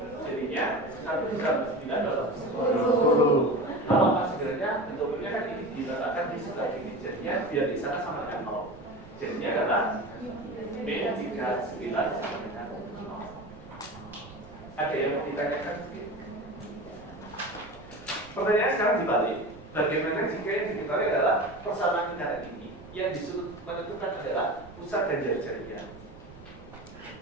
jadinya 1 ditambah 9 adalah 10. Kalau sebenarnya bentuknya kan ini diletakkan di sebelah ini, jadinya biar di sana sama dengan 0. Jadinya adalah min 39 sama dengan 0. Ada yang mau ditanyakan? Pertanyaan sekarang dibalik. Bagaimana jika yang diketahui adalah persamaan lingkaran ini yang disuruh menentukan adalah pusat dan jari-jarinya?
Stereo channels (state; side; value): noise; right; rumble, 20 dB below the sound